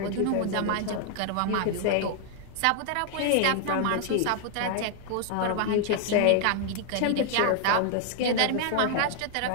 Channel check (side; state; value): both; different; correlation 0.00